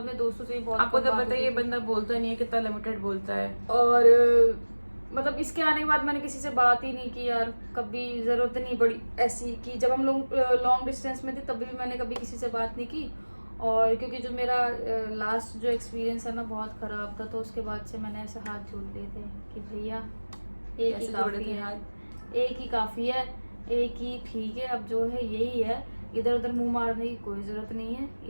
अपने दोस्तों से ही बहुत आपको कम तो बात पता है होती ये थी। बंदा बोलता नहीं है, कितना लिमिटेड बोलता है। और मतलब इसके आने के बाद मैंने किसी से बात ही नहीं की यार, कभी जरूरत नहीं पड़ी ऐसी कि जब हम लोग लॉन्ग डिस्टेंस में थे तभी भी मैंने कभी किसी से बात नहीं की। और क्योंकि जो मेरा लास्ट जो एक्सपीरियंस है ना बहुत खराब था, तो उसके बाद से मैंने ऐसे हाथ जोड़ लिए थे कि भैया एक ही कैसे जोड़े काफी थे है, हाथ? एक ही काफी है, एक ही ठीक है, अब जो है यही है, इधर उधर मुंह मारने की कोई जरूरत नहीं है,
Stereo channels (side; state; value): both; inverted; correlation -1.00